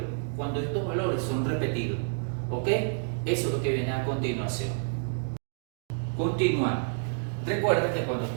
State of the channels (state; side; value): silent; left; digital silence